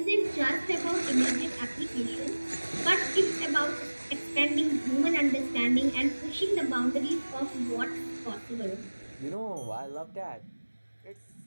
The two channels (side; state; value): both; inverted; correlation -1.00